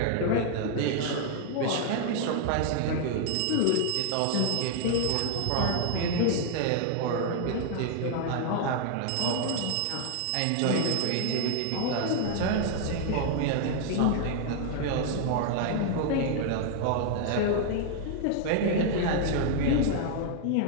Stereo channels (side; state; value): both; different; correlation 0.00